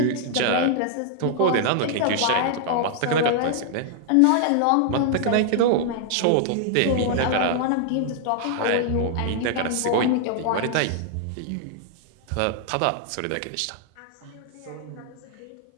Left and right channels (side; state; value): both; different; correlation 0.00